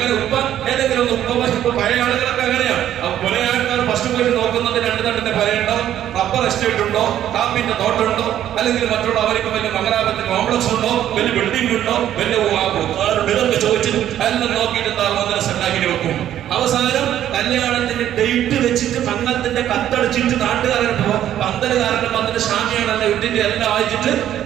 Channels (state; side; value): quieter; left; 11.4 dB